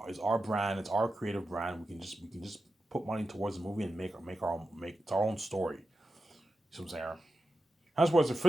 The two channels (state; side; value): normal; both; correlation 0.91